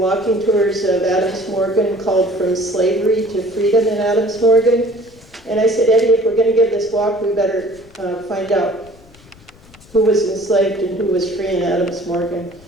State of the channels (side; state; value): left; noise; rumble, 25 dB below the sound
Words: tours of Adams Morgan called From Slavery to Freedom in Adams Morgan. And I said, Eddie, if we're going to give this walk, we better find out who was enslaved and who was free in Adams Morgan.